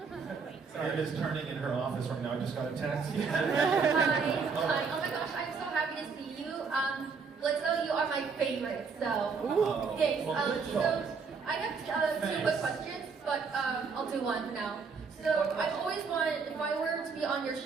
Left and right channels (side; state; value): left; quieter; 5.3 dB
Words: It is turning in her office right now. I just got a text. Hi. Oh my gosh, I'm so happy to see you. Blitzo, you are my favorite. So thanks. So I have two quick questions, but I'll do one for now. So I've always wanted, if I were to be on your